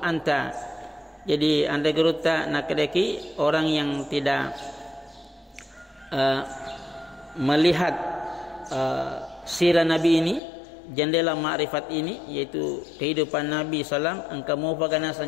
Jadi anda geruta nakadeki orang yang tidak melihat sirah Nabi ini, jendela ma'rifat ini, yaitu kehidupan Nabi SAW, engkau mau bagaimana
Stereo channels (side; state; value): right; drops out; at 10.4 s